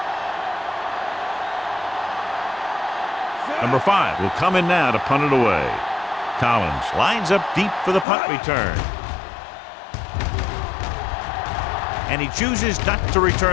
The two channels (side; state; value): right; drops out; at 8.1 s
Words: Number 5 will come in now to punt it away. Collins lines up deep for the punt return. And he chooses not to